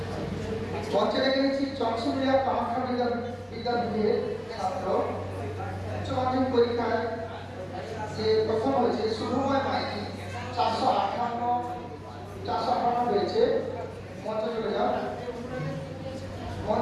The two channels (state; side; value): identical; both; correlation 1.00